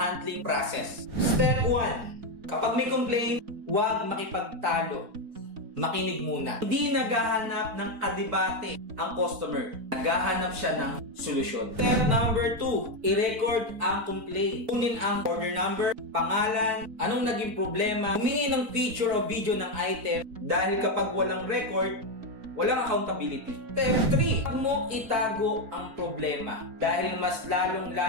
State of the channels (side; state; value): left; late; 4.3 ms